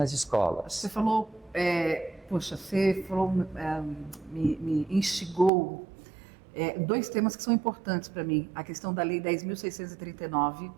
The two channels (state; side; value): drops out; left; at 5.5 s